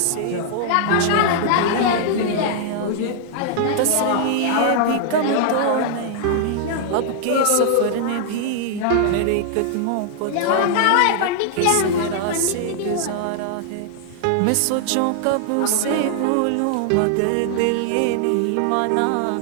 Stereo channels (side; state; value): both; different; correlation -0.01